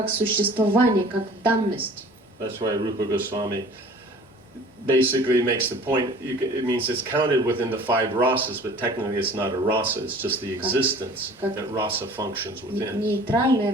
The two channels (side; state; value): both; normal; correlation 0.47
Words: существование, как данность. That's why Rupa Goswami basically makes the point, it means it's counted within the 5 rasas, but technically it's not a rasa, it's just the existence that rasa functions within. Нейтральная